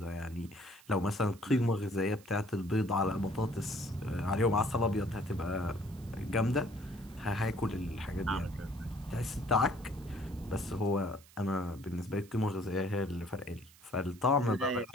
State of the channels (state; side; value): noise; right; hiss, 24 dB below the sound